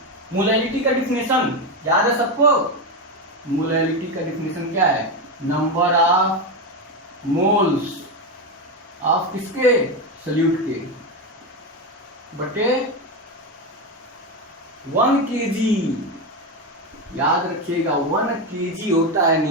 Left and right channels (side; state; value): both; normal; correlation 0.13